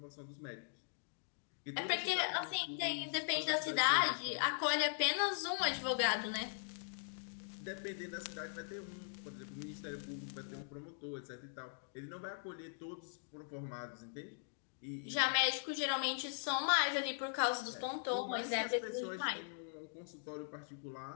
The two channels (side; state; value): right; silent; digital silence